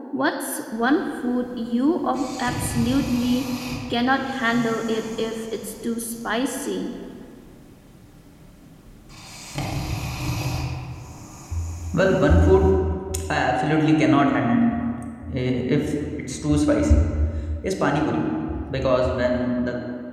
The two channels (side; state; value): both; identical; correlation 1.00